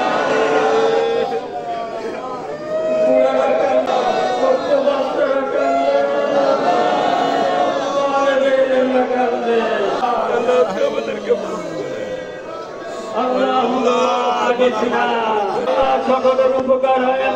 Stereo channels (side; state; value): both; identical; correlation 1.00